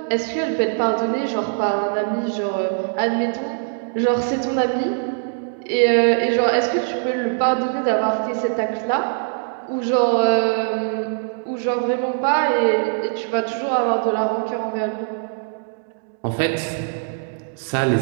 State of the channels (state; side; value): silent; left; digital silence